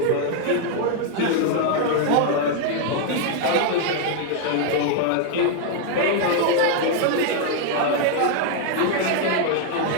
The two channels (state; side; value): different; both; correlation 0.00